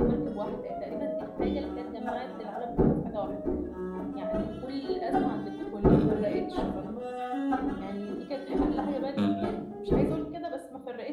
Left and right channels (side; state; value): both; identical; correlation 1.00